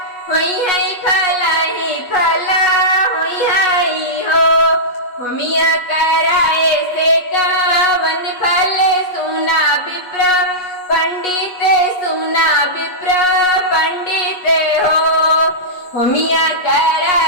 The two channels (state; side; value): late; right; 8.2 ms